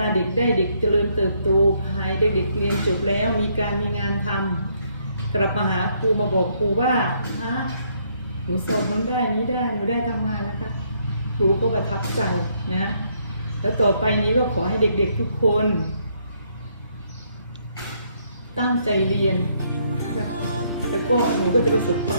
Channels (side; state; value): both; inverted; correlation -0.71